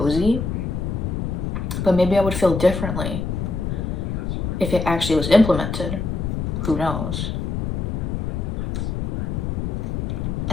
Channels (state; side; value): noise; left; rumble, 2 dB below the sound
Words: but maybe I would feel differently if it actually was implemented. Who knows?